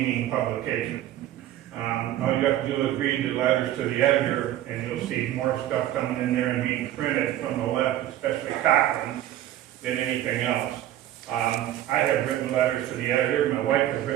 publication. All you have to do is read the letters to the editor, and you'll see more stuff coming in there and being printed from the left, especially Cochrane, than anything else. I have written letters to the editor. My wife has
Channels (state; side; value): quieter; left; 13.0 dB